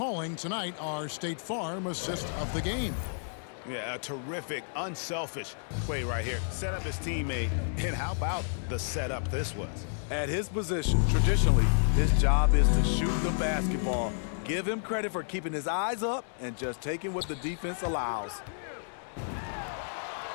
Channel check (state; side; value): silent; right; digital silence